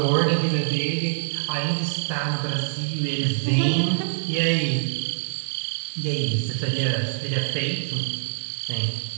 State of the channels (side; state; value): left; silent; digital silence